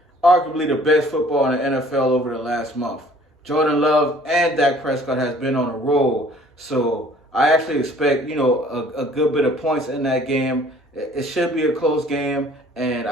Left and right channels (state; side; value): normal; both; correlation 0.54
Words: arguably the best football in the NFL over the last month. Jordan Love and Dak Prescott has been on a roll. So I actually expect, a good bit of points in that game. It should be a close game, and